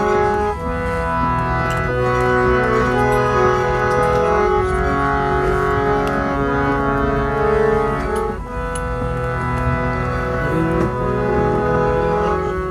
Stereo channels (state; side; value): identical; both; correlation 1.00